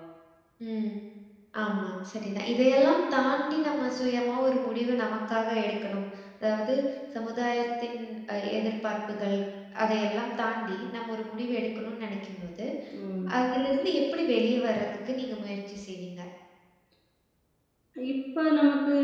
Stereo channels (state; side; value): identical; both; correlation 1.00